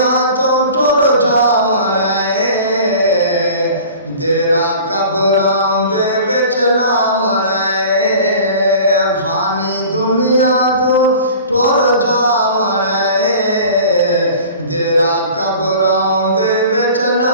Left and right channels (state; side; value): inverted; both; correlation -0.43